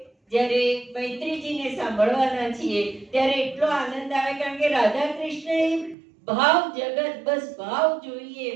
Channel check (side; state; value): left; drops out; at 6.0 s